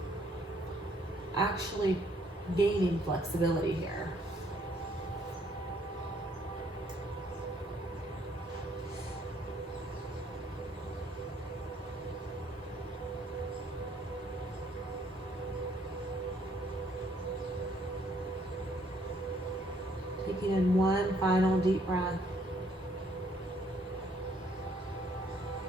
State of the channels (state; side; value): normal; both; correlation 0.66